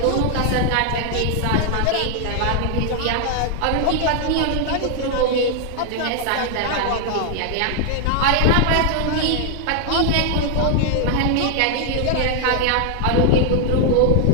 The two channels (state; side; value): different; both; correlation 0.00